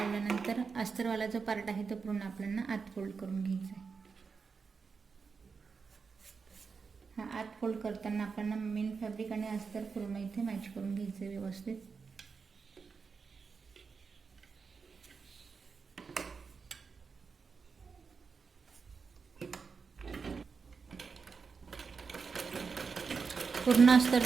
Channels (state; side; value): quieter; left; 5.2 dB